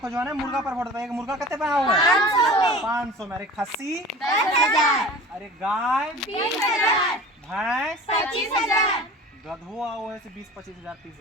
ने मुर्गा पर वोट दे एक मुर्गा कते में आओ 500 में। अरे खस्सी 10,000 अरे गाय 20,000 भैंस 25,000 गधो आओ ऐसे 20-25 हजार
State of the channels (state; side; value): normal; both; correlation 0.38